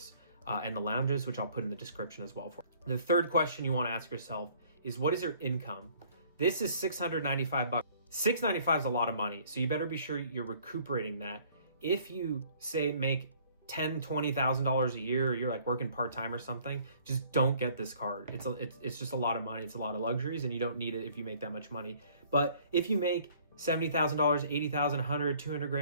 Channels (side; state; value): both; inverted; correlation -0.57